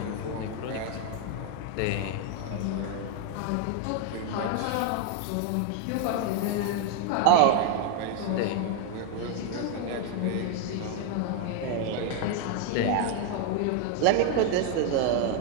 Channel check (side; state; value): both; different; correlation 0.01